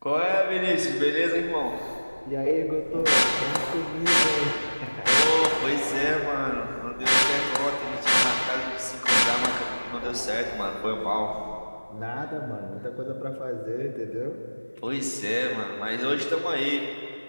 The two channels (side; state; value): both; inverted; correlation -1.00